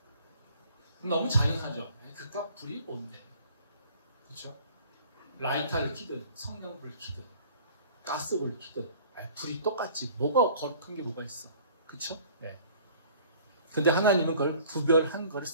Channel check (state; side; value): inverted; both; correlation -0.51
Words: 너무 잔인하죠. 그깟 불이 뭔데? 그렇죠? 라이터를 켜든 성냥불을 켜든 가스불을 켜든 불이 똑같지. 뭐가 거룩한 게 뭐가 있어? 그렇죠? 네. 근데 하나님은 그걸 구별한 거를